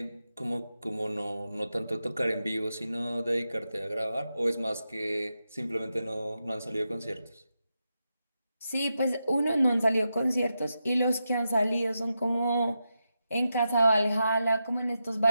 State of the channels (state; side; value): inverted; both; correlation -0.88